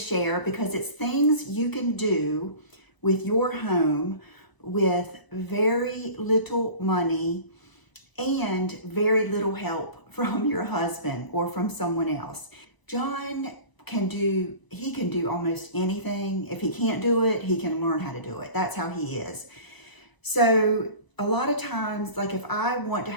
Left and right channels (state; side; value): late; right; 1.1 ms